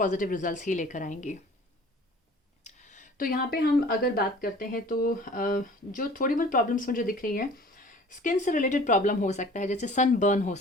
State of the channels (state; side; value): normal; both; correlation 0.47